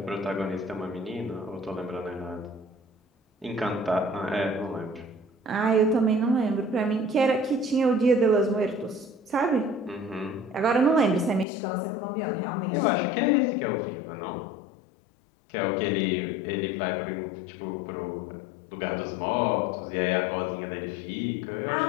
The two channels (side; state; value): right; drops out; at 11.5 s